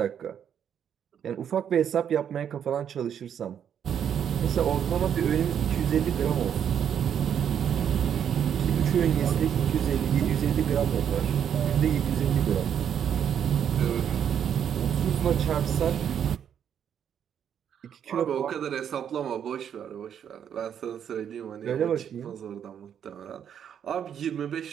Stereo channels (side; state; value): left; quieter; 8.7 dB